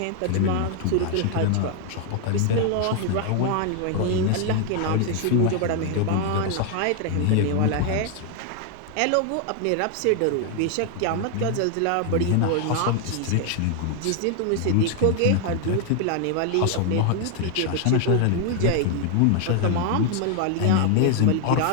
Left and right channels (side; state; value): both; different; correlation 0.00